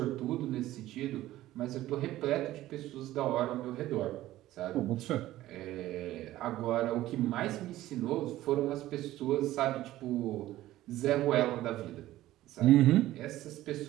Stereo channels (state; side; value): quieter; left; 15.1 dB